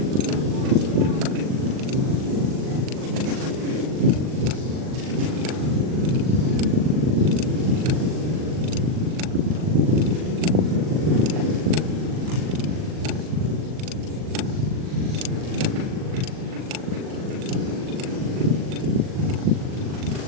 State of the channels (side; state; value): left; late; 39 ms